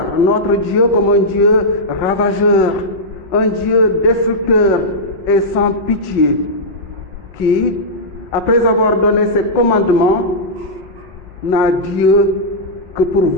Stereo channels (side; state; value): both; normal; correlation -0.10